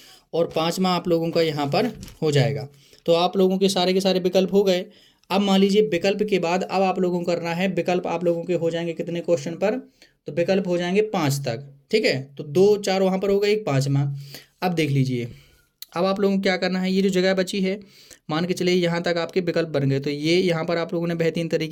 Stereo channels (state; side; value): identical; both; correlation 1.00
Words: और पांचवा आप लोगों का यहाँ पर हो जाएगा। तो आप लोगों के सारे विकल्प हो गए। अब मान लीजिए विकल्प के बाद अब आप लोगों को करना है, विकल्प आप लोगों के हो जाएंगे कितने क्वेश्चन पर, तो विकल्प हो जाएंगे 5 तक। ठीक है, तो 2 4 वहाँ पर होगा, एक पाँचवा। अब देख लीजिए, अब आप लोगों को क्या करना है, ये जो जगह बची है, मान के चलिए यहाँ तक आपके विकल्प बन गए, तो ये यहाँ पर आप लोगों ने बेहतरीन